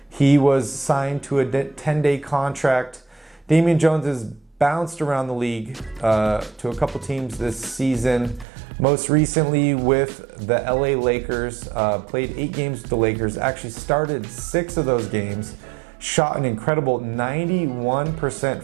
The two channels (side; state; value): left; drops out; at 8.5 s